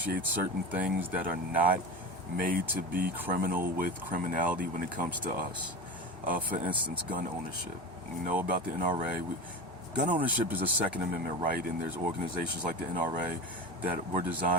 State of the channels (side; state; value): both; normal; correlation 0.27